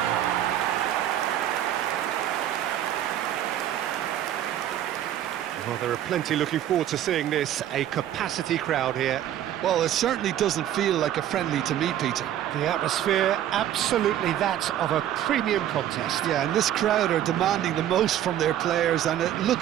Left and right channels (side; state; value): left; quieter; 11.5 dB